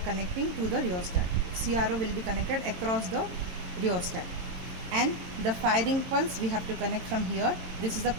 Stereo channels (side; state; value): left; late; 22 ms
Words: to the rheostat. CRO will be connected across the rheostat, and the firing pulse we have to connect from here. This is the